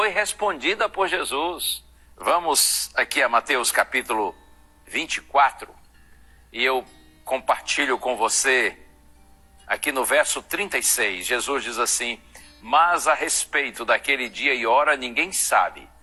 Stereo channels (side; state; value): both; identical; correlation 1.00